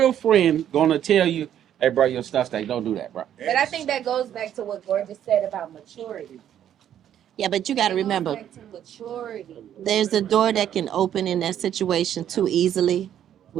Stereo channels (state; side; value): quieter; left; 10.4 dB